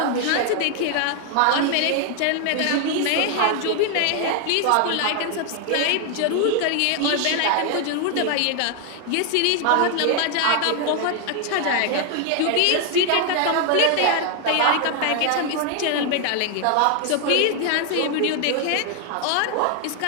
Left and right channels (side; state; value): both; different; correlation 0.00